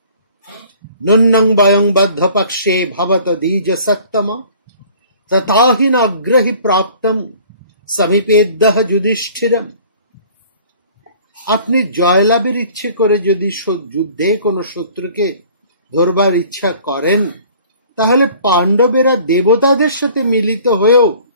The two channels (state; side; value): inverted; both; correlation -0.51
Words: নন্নং বয়ং বদ্ধ পক্ষে ভবত দ্বিজ সত্তম তথাহি নাগ্রহি প্রাপ্তম সমীপেদ্যঃ যুধিষ্ঠিরম। আপনি জয়লাভের ইচ্ছে করে যদি যুদ্ধে কোনো শত্রুকে ধরবার ইচ্ছা করেন, তাহলে পাণ্ডবেরা দেবতাদের সাথে মিলিত হয়েও